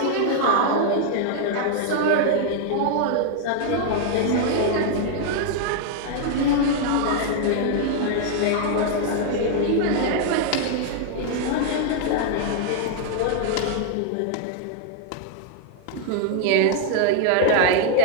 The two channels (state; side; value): different; both; correlation 0.00